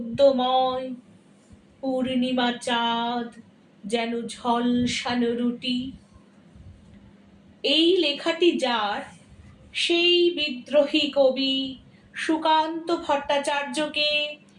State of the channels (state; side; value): identical; both; correlation 1.00